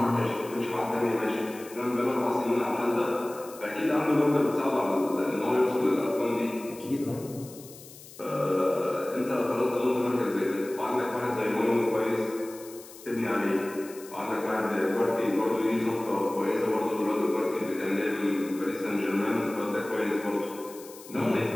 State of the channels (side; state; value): left; noise; hiss, 18 dB below the sound